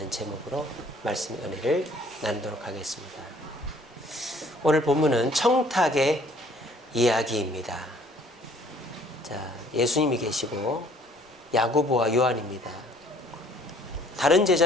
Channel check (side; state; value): both; normal; correlation 0.58